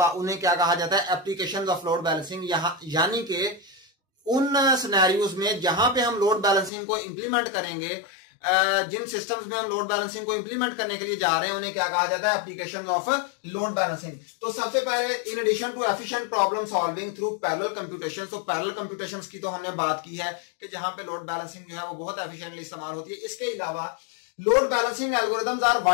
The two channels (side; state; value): right; drops out; at 6.7 s